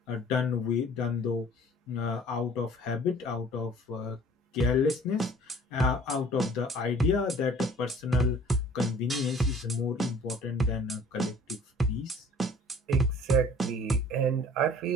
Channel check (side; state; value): both; normal; correlation 0.51